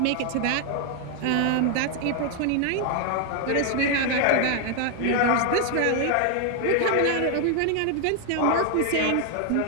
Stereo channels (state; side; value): different; both; correlation 0.00